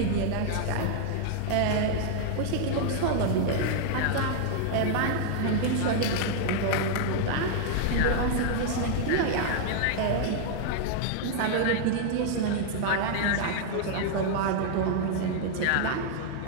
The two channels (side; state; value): both; different; correlation 0.00